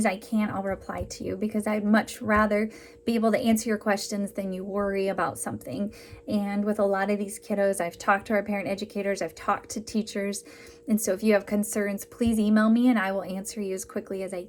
I can, I'll reply to you because I'd much rather be able to answer your questions than you worry about something. And with a lot of these kiddos, I've talked to our parent educators, I've talked to teachers. And so if you have concerns, please email me and I will answer you as quickly as I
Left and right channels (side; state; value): both; identical; correlation 1.00